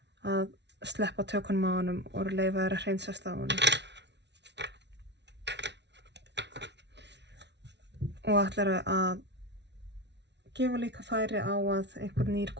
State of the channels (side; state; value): left; late; 0.50 ms